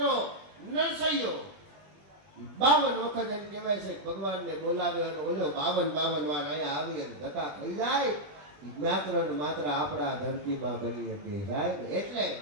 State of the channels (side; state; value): left; late; 21 ms